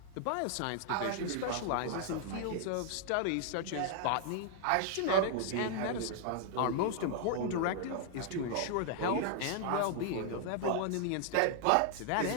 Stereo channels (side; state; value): both; different; correlation 0.00